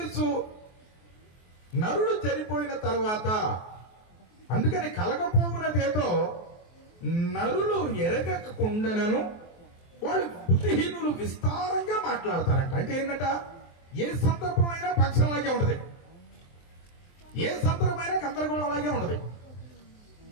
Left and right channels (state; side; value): late; right; 23 ms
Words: నరుడు చనిపోయిన తర్వాత. అందుకని కలగపోవునదేదో నరులు ఎరగకుండాను వాళ్ళు బుద్ధిహీనులు విస్తారంగా మాట్లాడతారంట. అంటే ఏంటంట, ఏ సందర్భమైనా పక్షంలాగే ఉంటది, ఏ సందర్భమైనా గందరగోళం అలాగే ఉంటది,